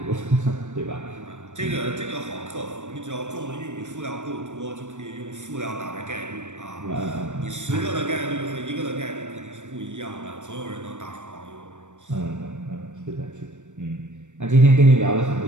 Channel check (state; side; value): late; left; 0.85 ms